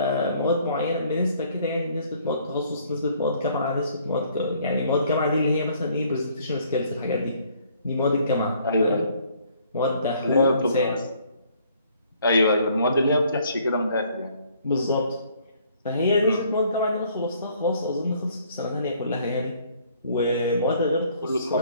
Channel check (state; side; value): inverted; both; correlation -0.62